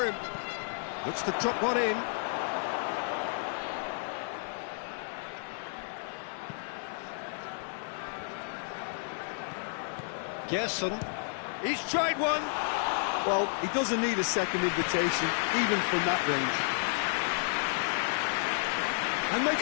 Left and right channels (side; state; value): right; silent; digital silence